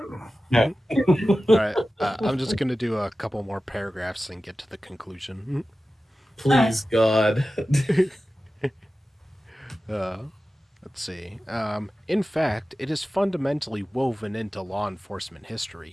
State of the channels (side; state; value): both; normal; correlation 0.95